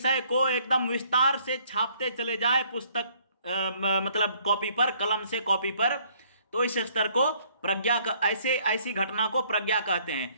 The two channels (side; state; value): both; inverted; correlation -0.63